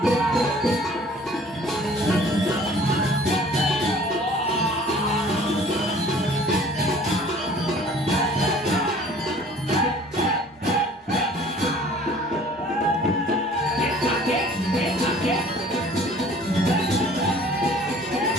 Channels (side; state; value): both; normal; correlation 0.51